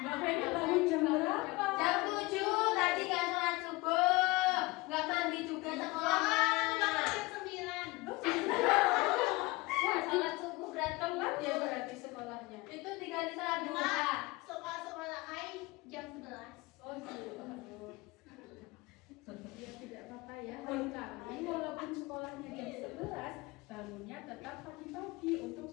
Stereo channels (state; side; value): quieter; right; 22.9 dB